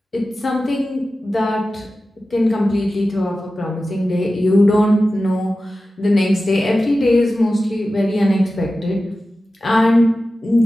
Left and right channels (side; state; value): both; normal; correlation 0.94